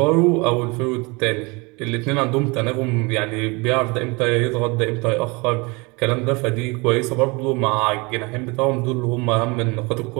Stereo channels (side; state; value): left; quieter; 27.0 dB